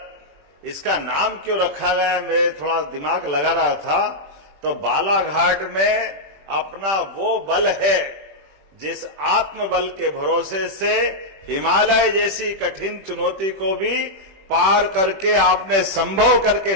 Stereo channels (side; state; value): left; late; 21 ms